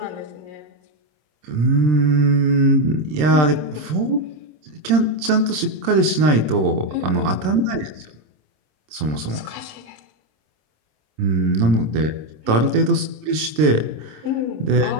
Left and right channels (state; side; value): late; left; 26 ms